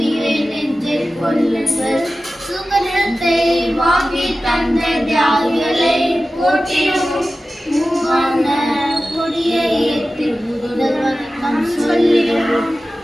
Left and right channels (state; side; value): normal; both; correlation 0.95